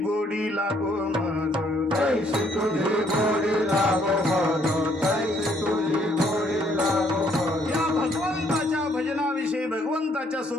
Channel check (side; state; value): both; normal; correlation 0.67